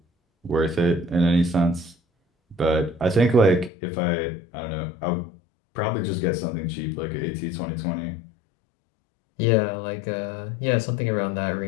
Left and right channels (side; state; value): right; drops out; at 3.7 s